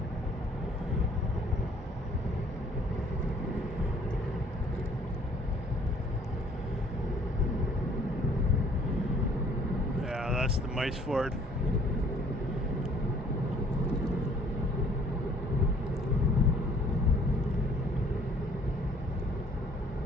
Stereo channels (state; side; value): normal; both; correlation 0.58